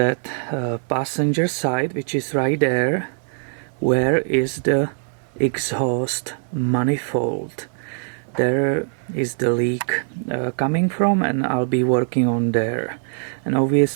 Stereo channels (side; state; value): left; silent; 64 dB below the other